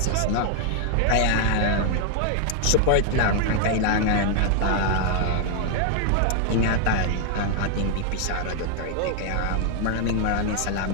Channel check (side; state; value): both; different; correlation 0.00